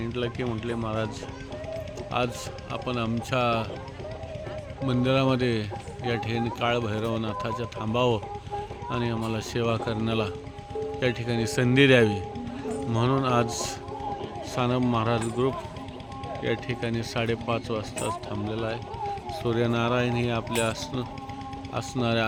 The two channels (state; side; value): identical; both; correlation 1.00